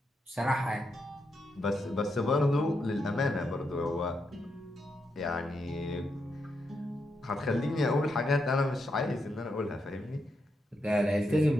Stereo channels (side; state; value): both; normal; correlation 0.82